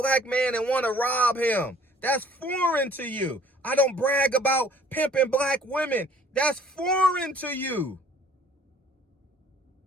man and want to rob him. That's foreign to you. I don't brag about pimping black women. That's foreign to you.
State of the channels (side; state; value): both; normal; correlation 0.55